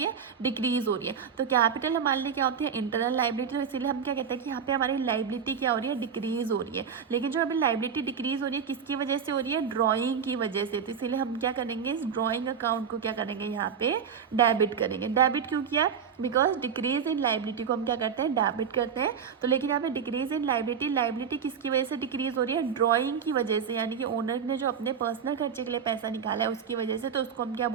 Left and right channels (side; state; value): left; quieter; 7.1 dB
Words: है, डिक्रीज हो रही है। तो कैपिटल हमारे लिए क्या होती है, इंटरनल लाइबिलिटी। तो इसीलिए हम क्या कहते हैं कि यहाँ पे हमारी लाइबिलिटी क्या हो रही है, डिक्रीज हो रही है। लेकिन जो अभी लाइबिलिटी डिक्रीज हो रही है, किसकी वजह से हो रही है, ड्राइंग की वजह से। तो इसीलिए हम क्या करेंगे, इस ड्राइंग अकाउंट को क्या करेंगे, यहाँ पे डेबिट करेंगे। डेबिट क्यों किया, बिकॉज डिक्रीज इन लाइबिलिटी को हम क्या करते हैं, डेबिट करते हैं। तो लेकिन यहाँ पे डिक्रीज इन लाइबिलिटी, लाइबिलिटी किसकी वजह से डिक्रीज हो रही है, ड्राइंग की वजह से, यानी कि ओनर ने जो अपने पर्सनल खर्चे के लिए पैसा निकाला है उसकी वजह से। तो उसको हम क्या